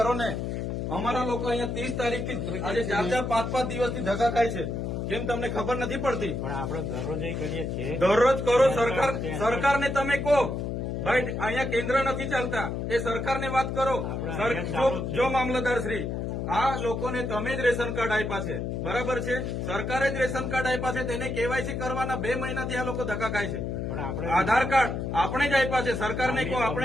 ને. અમારા લોકો અહીંયા 30 તારીખથી આજે 4-4, 5-5 દિવસથી ધક્કા ખાય છે. કેમ તમને ખબર નથી પડતી? પણ આપણે દરરોજ કરીએ છીએ. દરરોજ કરો. સરકારને તમે કહો ભાઈ અહીંયા કેન્દ્ર નથી ચાલતા, એ સરકારને વાત કરો. જો મામલતદાર શ્રી, આ લોકોને તમે જ રેશન કાર્ડ આપ્યા છે, બરાબર છે? સરકારે જ રેશન કાર્ડ આપ્યા છે, તેને કેવાયસી કરવાના 2 મહિનાથી આ લોકો ધક્કા ખાય છે. આધાર કાર્ડ આપણે જ આપ્યા છે, સરકારને કહો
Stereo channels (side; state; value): left; noise; hum, 3 dB below the sound